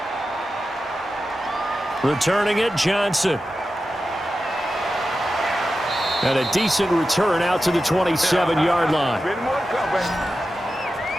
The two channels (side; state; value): both; normal; correlation 0.92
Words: Returning it, Johnson. And a decent return out to the 27-yard line.